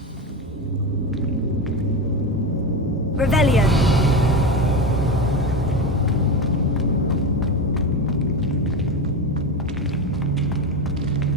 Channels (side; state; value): both; normal; correlation 0.19